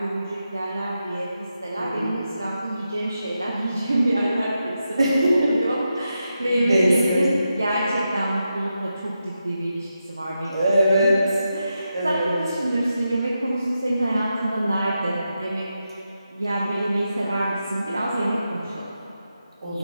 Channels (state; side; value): inverted; both; correlation -0.87